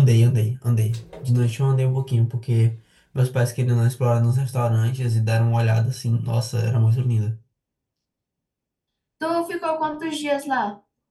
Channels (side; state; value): both; identical; correlation 1.00